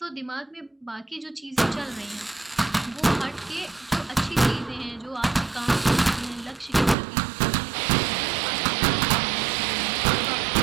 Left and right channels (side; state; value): left; drops out; at 7.0 s